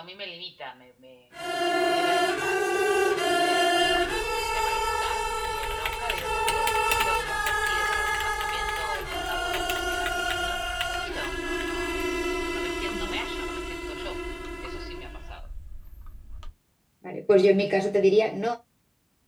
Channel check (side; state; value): both; identical; correlation 1.00